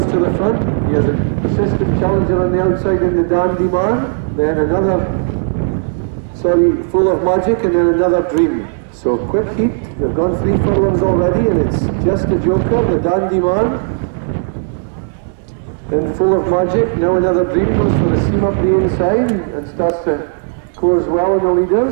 to the front. He has a persistent challenger on the outside in the Dandy Man. Then Full of Magic and then Another Dream. So quick heat, we've gone 3 furlongs already and it's Just a Joker, the Dandy Man, then Full of Magic. Now Another Dream goes for a seam up the inside and starts to course well on the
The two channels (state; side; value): silent; left; digital silence